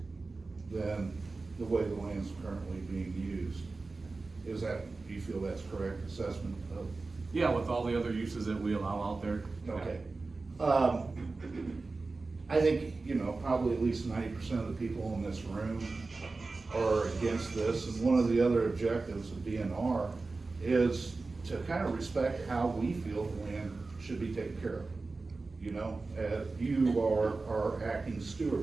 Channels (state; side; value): quieter; left; 3.7 dB